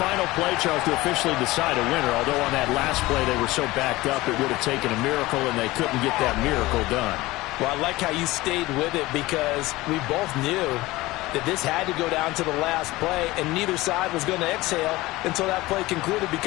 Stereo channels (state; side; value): quieter; right; 19.3 dB